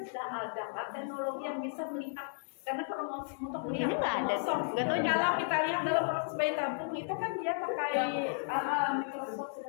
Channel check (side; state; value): right; silent; digital silence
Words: sudah ada kan teknologi yang bisa melihat karena kromosom untuk melihat Ini nggak ada, kromosom. nggak tahu juga. Kalau kita lihat dalam proses bayi tabung itu kan dia pakai mikroskop